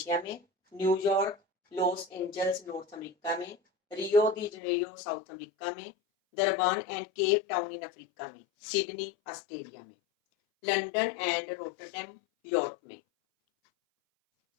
में, New York Los Angeles North America में, Rio de Janeiro South America में, Durban and Cape Town in Africa में, सिडनी ऑस्ट्रेलिया में, लंदन एंड रोटरडैम यूरोप में।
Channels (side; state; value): right; drops out; at 4.5 s